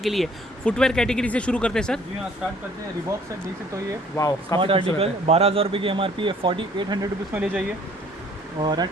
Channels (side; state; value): both; normal; correlation 0.57